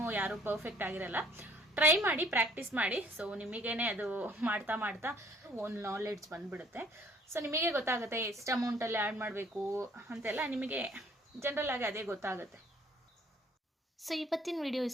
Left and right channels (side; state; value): both; normal; correlation 0.58